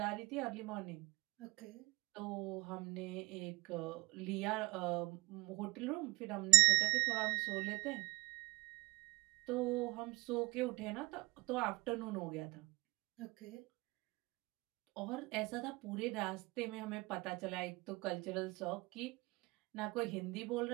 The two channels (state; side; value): quieter; left; 25.9 dB